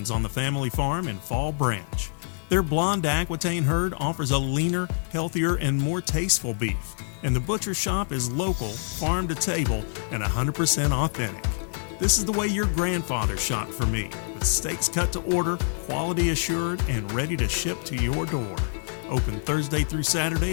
on the family farm in Fall Branch. Their blonde Aquitaine herd offers a leaner, healthier, and more tasteful beef, and the butcher shop is local, farm to table, and 100% authentic. This is the way your grandfather shopped for me, with steaks cut to order, quality assured, and ready to ship to your door. Open Thursday through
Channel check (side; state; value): right; silent; digital silence